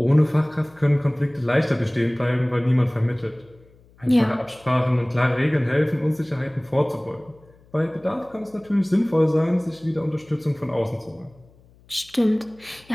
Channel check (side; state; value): left; noise; hum, 29 dB below the sound